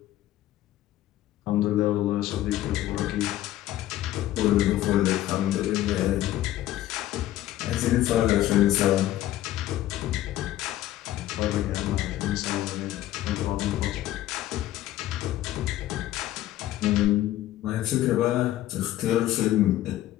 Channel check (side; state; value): right; quieter; 14.1 dB